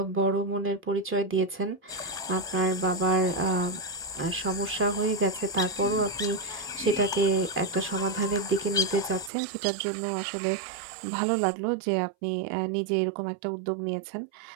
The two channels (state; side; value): drops out; left; at 9.3 s